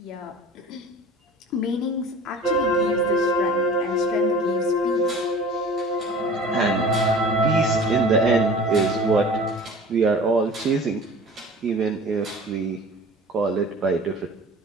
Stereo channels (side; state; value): both; normal; correlation 0.42